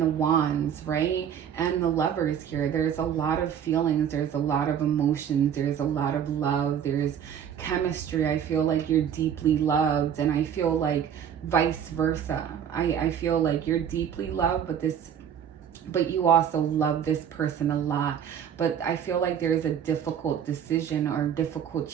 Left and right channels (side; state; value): left; quieter; 8.7 dB